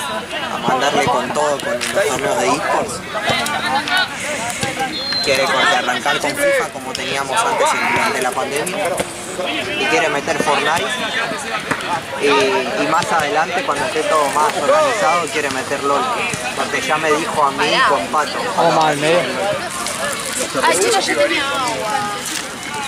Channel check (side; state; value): both; identical; correlation 1.00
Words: mandarle con todo con los torneos de eSports. Quiere arrancar con FIFA como teníamos antes durante la pandemia. Y quiere meter Fortnite. Y más adelante, cuando esté todo más organizado, quiere meter LOL. Porque ya me dijo a mí con Pato. Vamos más al medio. Ay, chicos, yo tenía agua.